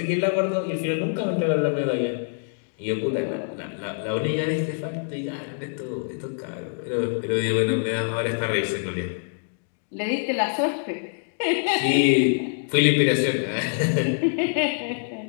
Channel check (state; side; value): silent; right; digital silence